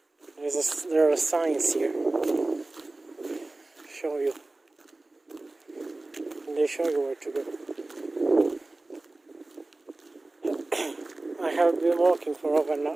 There are signs here. Show you. And they show you where to go. I have been walking for over an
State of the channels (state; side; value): quieter; left; 3.0 dB